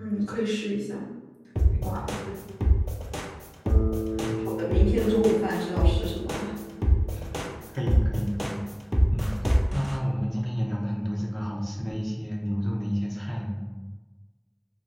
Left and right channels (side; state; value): both; identical; correlation 1.00